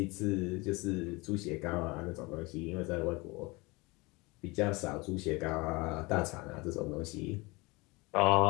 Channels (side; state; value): right; quieter; 25.0 dB